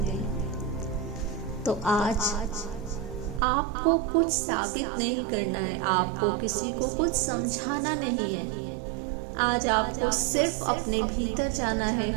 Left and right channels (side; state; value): left; drops out; at 3.4 s